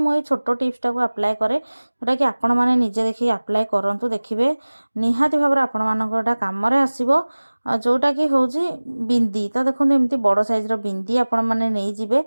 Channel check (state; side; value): inverted; both; correlation -1.00